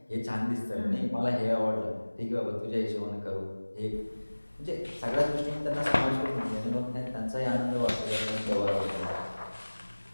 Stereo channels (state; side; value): inverted; both; correlation -1.00